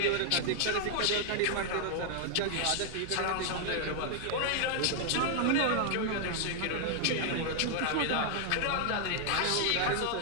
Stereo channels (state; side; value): different; both; correlation 0.00